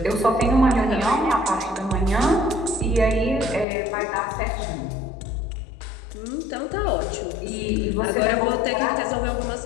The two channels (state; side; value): drops out; right; at 3.7 s